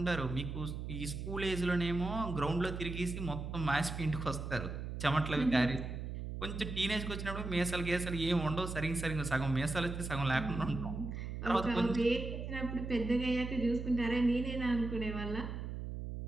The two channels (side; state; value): right; noise; hum, 6 dB below the sound